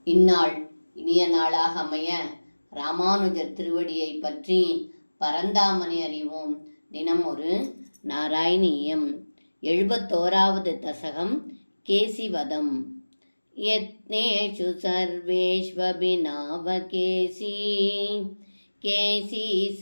இந்நாள் இனிய நாளாக அமைய ராமானுஜர் திருவடியை பற்றி பரந்தாமனை அறிவோம். தினம் ஒரு நாராயணீயம். 71வது தசகம் கேசிவதம். யத்னேஷு சர்வேஷ்வபிநாவகேசி கேசி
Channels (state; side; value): inverted; both; correlation -1.00